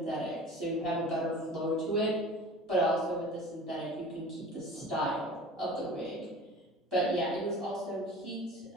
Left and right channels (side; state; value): both; normal; correlation 0.40